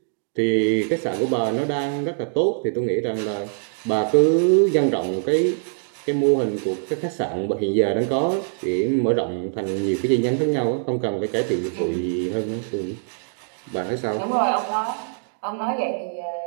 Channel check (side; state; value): left; silent; digital silence